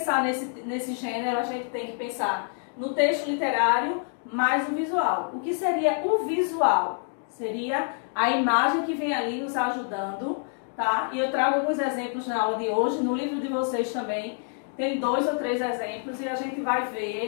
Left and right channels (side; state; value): right; silent; 56 dB below the other